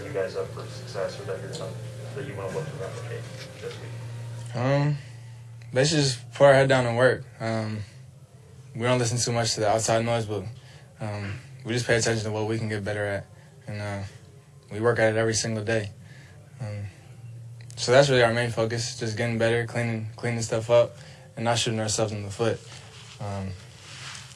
you guys up for success, or that you want to look to replicate this week? Basically just put our head down and work. We don't listen too much to the outside noise, but we just pay attention to what we can get better at, and we work at it every single day. So that's really our main focus, just getting better, cleaning stuff up, and not shooting ourselves in the foot.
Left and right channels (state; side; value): identical; both; correlation 1.00